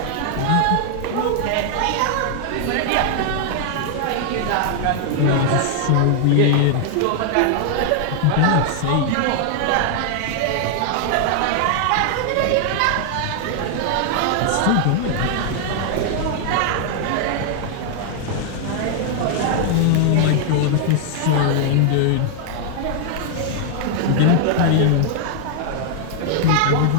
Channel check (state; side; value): different; both; correlation 0.00